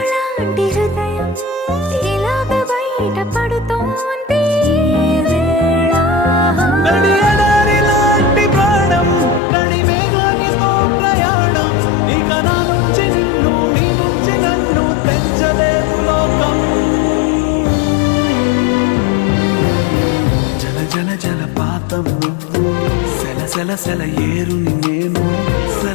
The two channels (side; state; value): right; drops out; at 9.4 s